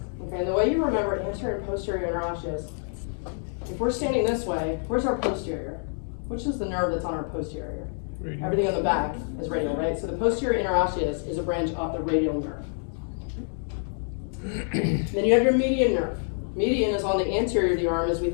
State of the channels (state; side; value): silent; right; 60 dB below the other